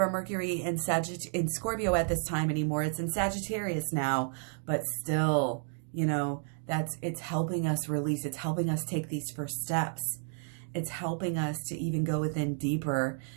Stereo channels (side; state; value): left; silent; 57 dB below the other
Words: our Mercury in Scorpio at this time anymore. It's in Sagittarius now, but still, You know, it's helping us release. It's helping us take these first steps. It's helping us to even go within deeper